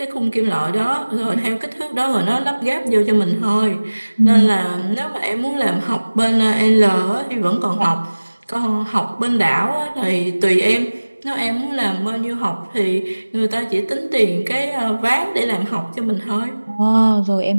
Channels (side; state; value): both; inverted; correlation -1.00